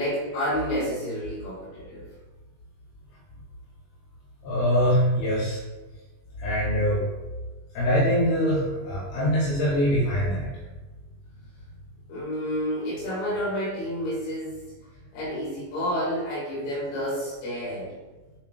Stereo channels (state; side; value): late; right; 21 ms